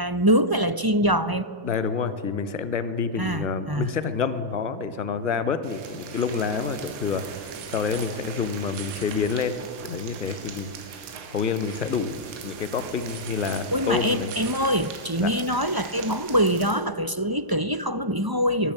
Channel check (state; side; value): late; left; 1.0 ms